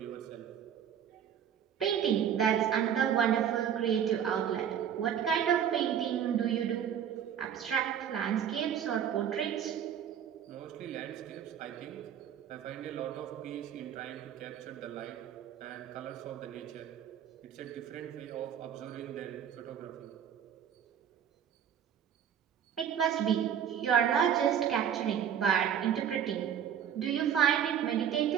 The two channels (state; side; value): quieter; left; 9.0 dB